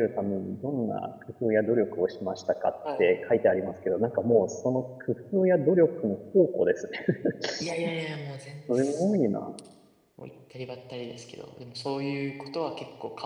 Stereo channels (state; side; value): identical; both; correlation 1.00